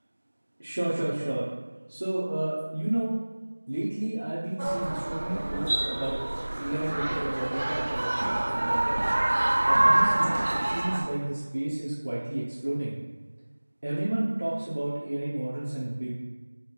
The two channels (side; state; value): both; inverted; correlation -1.00